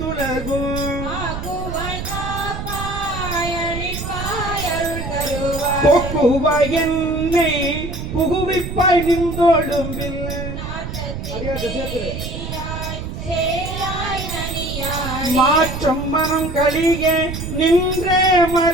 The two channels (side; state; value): right; noise; rumble, 7 dB below the sound